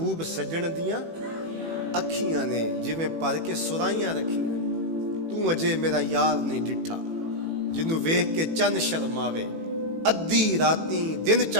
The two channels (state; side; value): late; left; 18 ms